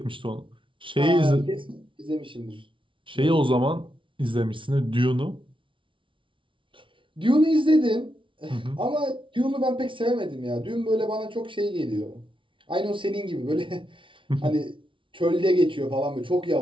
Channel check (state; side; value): late; left; 0.25 ms